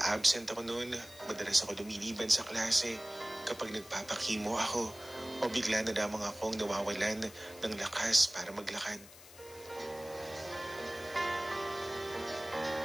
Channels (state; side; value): noise; left; hiss, 19 dB below the sound